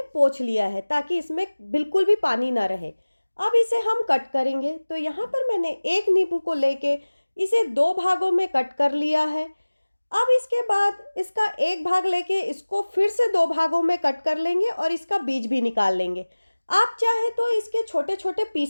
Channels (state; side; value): inverted; both; correlation -1.00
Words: पोंछ लिया है ताकि इसमें बिल्कुल भी पानी ना रहे। अब इसे हम कट करेंगे। तो यहाँ पर मैंने एक नींबू को लेके इसे दो भागों में कट कर लिया है। अब इसके बाद इसका एक भाग लेके इसको फिर से दो भागों में कट कर लेंगे और इसका बीज भी निकाल लेंगे। आप चाहे तो इसके छोटे छोटे